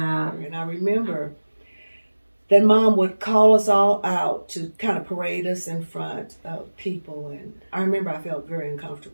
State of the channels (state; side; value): inverted; both; correlation -1.00